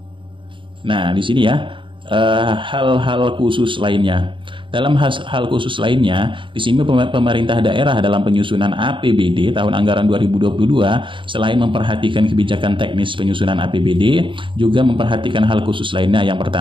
Nah, di sini ya hal-hal khusus lainnya. Dalam hal khusus lainnya, di sini pemerintah daerah dalam penyusunan APBD tahun anggaran 2022 selain memperhatikan kebijakan teknis penyusunan APBD, juga memperhatikan hal khusus lainnya. Yang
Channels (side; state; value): left; late; 0.24 ms